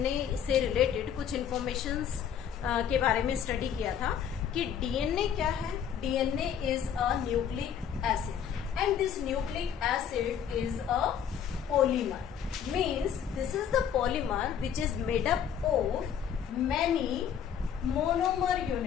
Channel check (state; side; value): quieter; right; 8.5 dB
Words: से रिलेटेड कुछ इंफॉर्मेशंस के बारे में स्टडी किया था कि डीएनए क्या है. DNA is a nucleic acid and this nucleic acid is a polymer. Means this is the polymer which is made up of many monomer